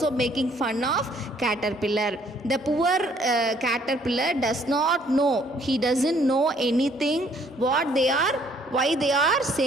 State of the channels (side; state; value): both; normal; correlation 0.63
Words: making fun of caterpillar. The poor caterpillar does not know. He doesn't know anything why they are